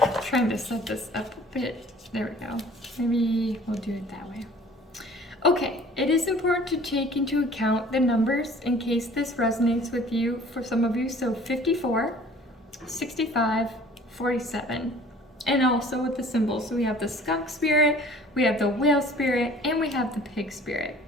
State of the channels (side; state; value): both; normal; correlation 0.50